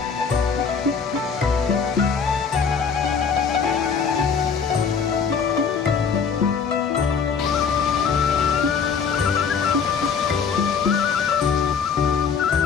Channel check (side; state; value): right; quieter; 6.1 dB